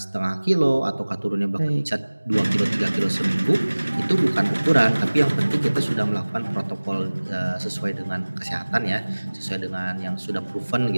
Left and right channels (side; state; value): both; inverted; correlation -1.00